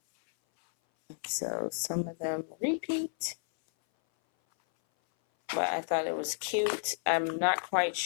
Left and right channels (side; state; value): right; silent; 57 dB below the other